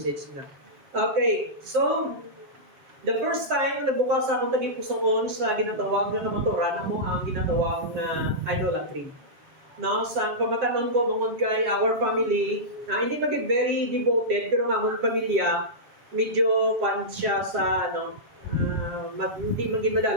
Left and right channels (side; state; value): left; late; 7.3 ms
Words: na. Okay, so, the first time nagbukas akong tagipusoon sa ginatawag na kamaturan mo ang ginatawag na idolatry. No, sa pamatanon ko bungod kay our family, hindi maging very devoted pero ang among pamilya medyo pan siya sa hindi maging